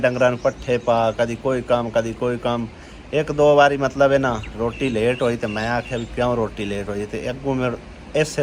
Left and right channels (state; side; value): identical; both; correlation 1.00